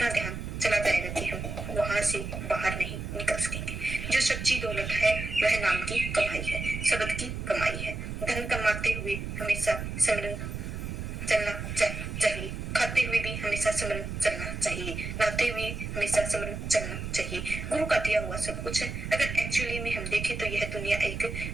ध्यान चला जाएगा कि हम वहां से बाहर नहीं निकल सकेंगे। जो सच्ची दौलत है वह नाम की कमाई है, शब्द की कमाई है। धन कमाते हुए हमेशा सिमरन चलना चाहिए, खाते हुए भी हमेशा सिमरन चलना चाहिए, नहाते हुए हमेशा सिमरन चलना चाहिए। गुरु का दिया हुआ सब कुछ है। अगर एक्चुअली में हम देखें तो यह दुनिया एक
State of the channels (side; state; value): right; noise; rumble, 6 dB below the sound